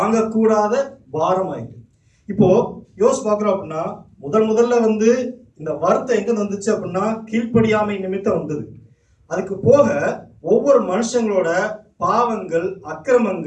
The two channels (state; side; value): identical; both; correlation 1.00